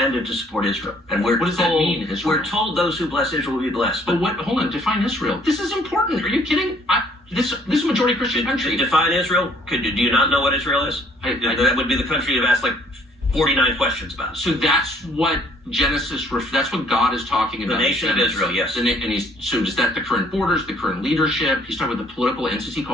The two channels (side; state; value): both; normal; correlation 0.61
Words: to support Israel, and we're What does that told, mean, Israel? We're told those who bless Israel will be blessed. But what? Hold on. Define Israel. This is important. Are you kidding? This is a majority Christian country. Define Israel. Do you not know what Israel is? That would be the country you've asked like 49 questions about. So that's what Genesis. That's what God is talking about. The nation of Israel, yes. And so is that the current borders, the current leadership? He's talking about the political entity